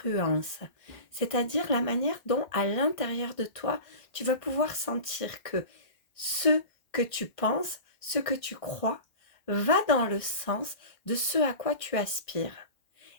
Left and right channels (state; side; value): late; right; 1.5 ms